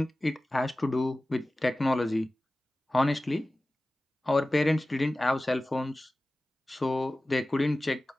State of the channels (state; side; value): normal; both; correlation 0.96